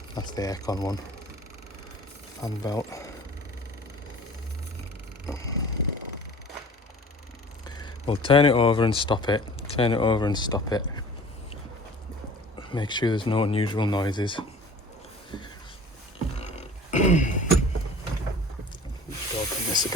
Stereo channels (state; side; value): normal; both; correlation 0.45